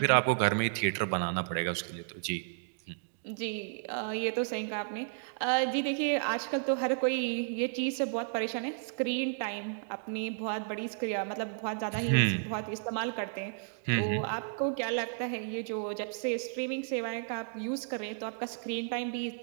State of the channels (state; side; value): silent; left; digital silence